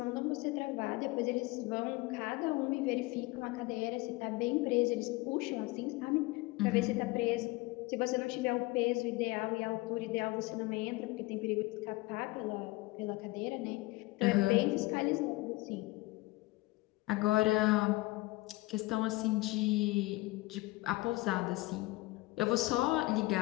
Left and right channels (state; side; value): quieter; right; 21.3 dB